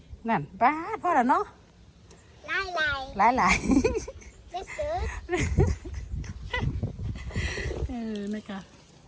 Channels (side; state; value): both; identical; correlation 1.00